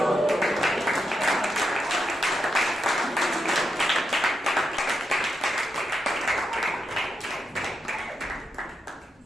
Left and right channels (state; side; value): normal; both; correlation 0.84